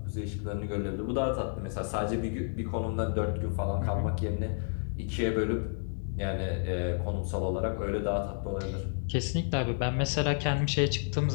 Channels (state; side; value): silent; right; digital silence